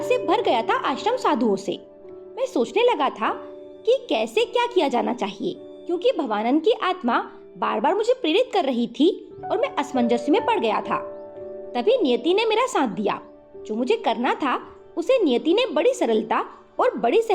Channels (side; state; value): both; identical; correlation 1.00